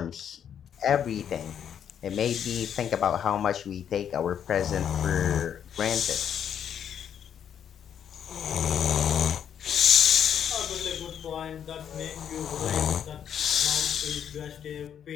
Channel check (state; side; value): quieter; right; 8.8 dB